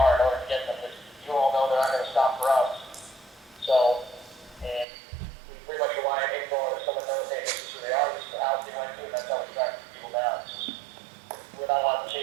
in order to get them, because you all know they're not gonna stop for us. So, and we pretty much rely on info, and if someone knows, hey, this is who they are, this is the house they went to, and that's how we track people down. It's just, we're not allowed to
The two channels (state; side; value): drops out; left; at 4.9 s